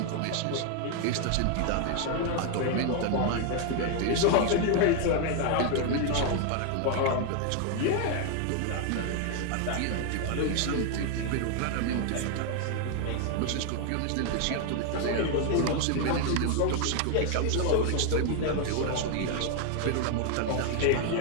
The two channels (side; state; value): both; different; correlation 0.00